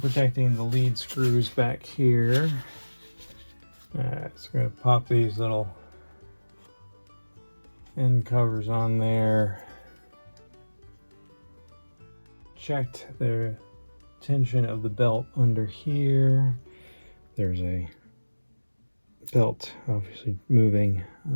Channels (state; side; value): inverted; both; correlation -1.00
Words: the lead screws back here. Alright, so we're going to pop these little end covers on there. Checked the tension of the belt under here. There's a belt obviously moving